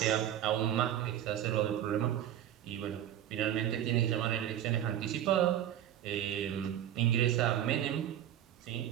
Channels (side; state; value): left; quieter; 11.2 dB